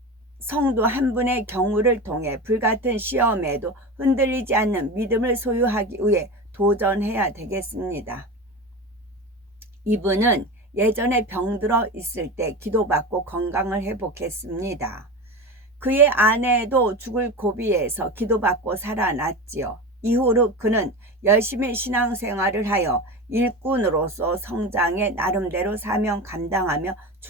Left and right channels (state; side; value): normal; both; correlation 0.26